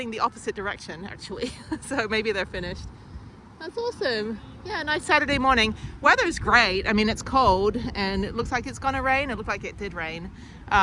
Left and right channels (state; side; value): identical; both; correlation 1.00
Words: the opposite direction, actually. So maybe they're finished. That's awesome. Yeah, nice Saturday morning. Weather's great. I mean, it's cold and it looks like it's gonna rain. It looked like it did rain.